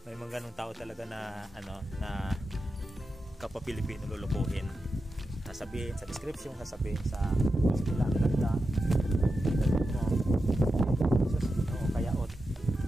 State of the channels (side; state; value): both; normal; correlation 0.90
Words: may mga ganung tao talaga na na kapwa-Pilipino lulukuhin. Sasabihin sa description, sasabihin sa sila ang ganda mo, kaya